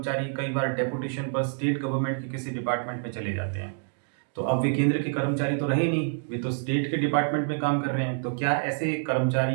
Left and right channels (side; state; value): left; silent; 60 dB below the other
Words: कई बार डेपुटेशन पर स्टेट गवर्नमेंट के किसी डिपार्टमेंट में चले जाते हैं। तो अब वे केंद्र के कर्मचारी तो रहे नहीं, वे तो स्टेट के डिपार्टमेंट में काम कर रहे हैं। तो क्या ऐसे